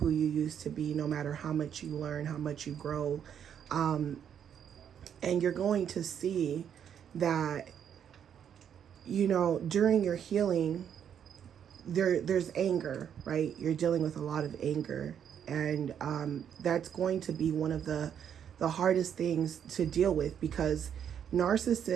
you used to be, no matter how much you learn, how much you grow. And you're going to see that, you know, during your healing, there's anger, right? You're dealing with a lot of anger, and that's going to be one of the hardest things to deal with, because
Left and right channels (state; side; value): quieter; left; 8.7 dB